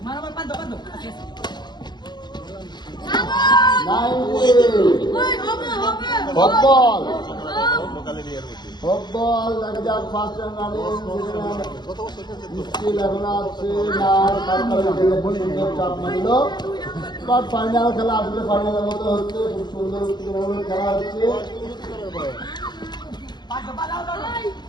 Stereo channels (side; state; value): right; late; 0.21 ms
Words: football football দেখা যাক ফার্স্ট রানে মুশকিল এখন আছে না চাপ মারল বাট ফাইনাল খেলা আসলে ফাইনালের মতো হচ্ছে খুব সুন্দর খেলা হচ্ছে